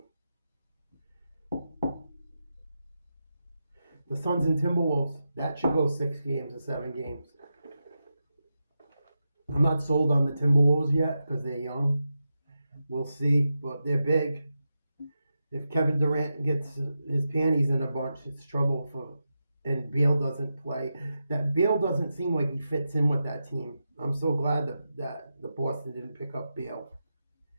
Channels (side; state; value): both; inverted; correlation -0.89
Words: The Suns and Timberwolves, that should go 6 games or 7 games. I'm not sold on the Timberwolves yet because they're young. We'll see, but they're big. If Kevin Durant gets his panties in a bunch, it's trouble and Beal doesn't play. That Beal doesn't seem like he fits in with that team. I'm so glad that the Boston didn't pick up Beal.